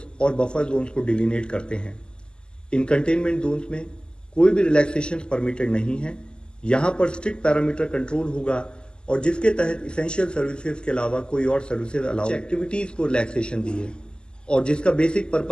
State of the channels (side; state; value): right; late; 0.048 ms